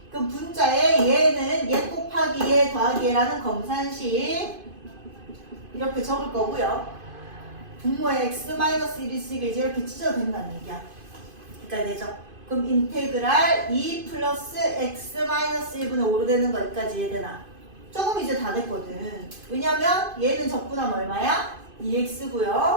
그럼 분자에 얘는 얘 곱하기 얘 더하기 얘라는 검산식 이렇게 적을 거고요. 분모에 x-1이 있으니까 이제 이렇게 찢어도 된다는 얘기야. 되죠. 그럼 인테그랄 2 플러스 x-1분의 5로 되는 거 여기까지 이해되나? 조금 이제 다 됐거든. 왜냐면 얘는 적분하면 얼마야?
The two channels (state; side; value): late; left; 2.5 ms